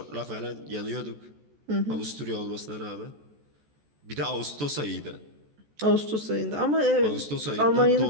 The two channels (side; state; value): left; late; 14 ms